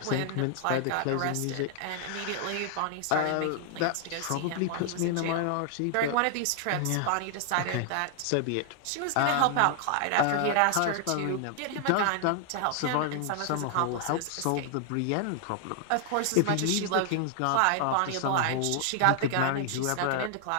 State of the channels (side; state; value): both; different; correlation 0.00